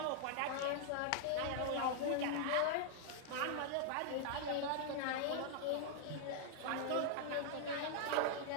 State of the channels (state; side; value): different; both; correlation -0.01